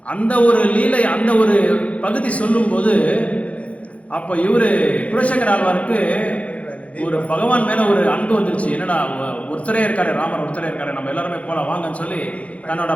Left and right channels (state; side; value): late; right; 0.064 ms